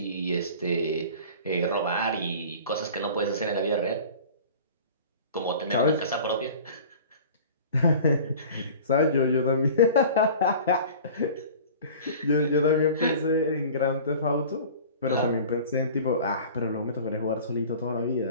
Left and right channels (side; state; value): both; inverted; correlation -0.42